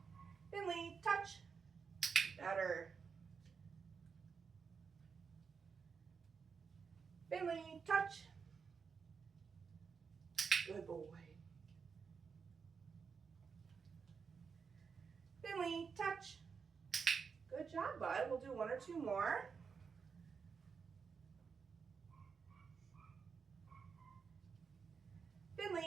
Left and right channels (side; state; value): left; quieter; 5.8 dB